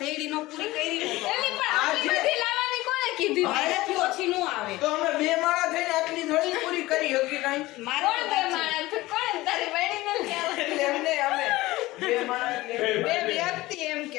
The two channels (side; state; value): right; quieter; 18.6 dB